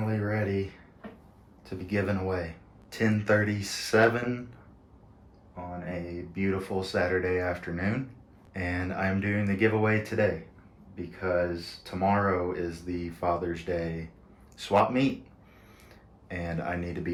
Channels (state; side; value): identical; both; correlation 1.00